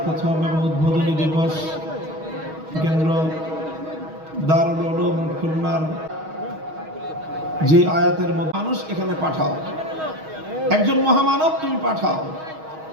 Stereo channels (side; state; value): left; late; 6.3 ms